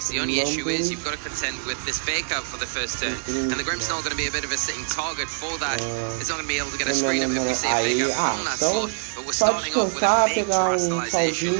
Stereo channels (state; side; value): silent; left; 62 dB below the other